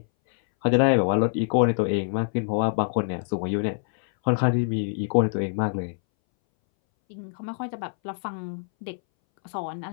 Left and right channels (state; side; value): silent; right; 61 dB below the other